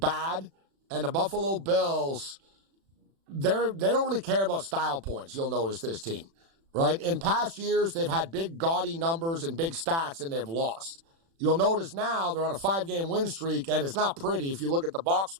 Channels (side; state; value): left; late; 36 ms